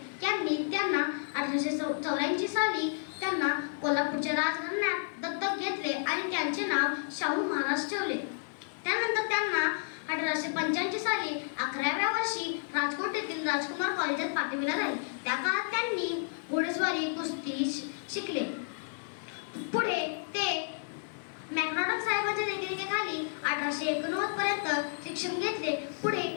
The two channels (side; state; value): right; silent; digital silence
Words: यांनी त्यांना 1884 साली त्यांना कोल्हापूरच्या राजघराण्यात दत्तक घेतले आणि त्यांचे नाव शाहू महाराज ठेवले. त्यानंतर त्यांना 1885 साली 11व्या वर्षी राजकोट येथील राजकुमार कॉलेजात पाठविले झाले. त्या काळात त्यांनी घोडेस्वारी कुस्ती शिकले. पुढे ते मॅकडॉनल्ड साहेबांच्या देखरेखीखाली 1889 पर्यंत शिक्षण घेतले. पुढे